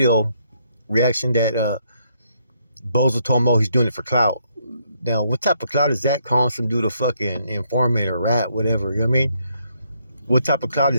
reaction that Bozo told him, he's doing it for clout. Now, what type of clout is that, calling some dude a fucking informant or rat, whatever, you know what I mean? What type of clout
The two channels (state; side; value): inverted; both; correlation -0.73